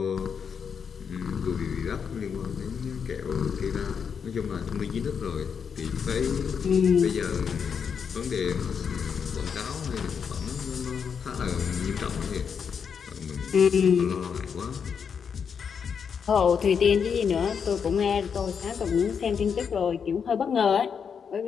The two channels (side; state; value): right; quieter; 6.7 dB